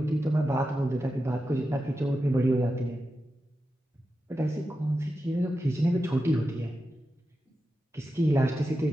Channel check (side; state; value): both; normal; correlation 0.90